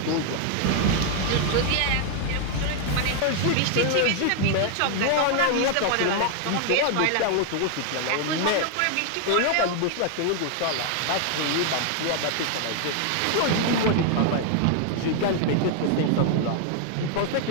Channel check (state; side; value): different; both; correlation 0.00